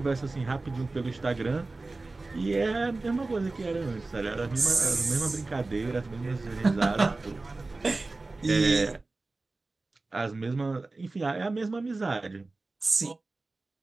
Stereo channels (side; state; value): left; quieter; 3.4 dB